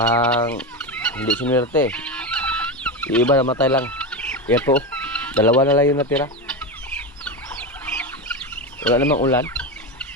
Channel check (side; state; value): both; normal; correlation 0.17